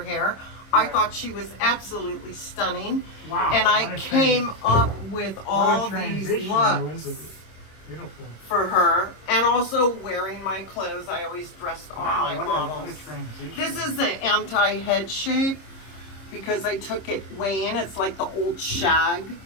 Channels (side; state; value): right; late; 26 ms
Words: I thought she was absolutely stunning. Wow, And what I a came up with all What a these transition, looks Elizabeth. Beautiful. for her. And also wearing my clothes. I always dressed all my Wow, models. what a transition. This is the anti-head shape because I took it way in. It's like the old shag